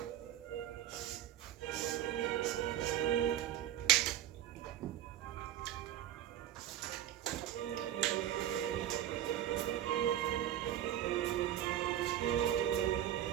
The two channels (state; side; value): quieter; left; 11.8 dB